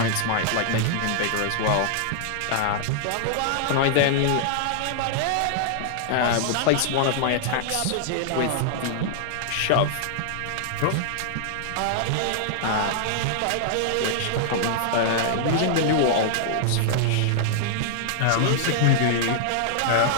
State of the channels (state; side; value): different; both; correlation -0.01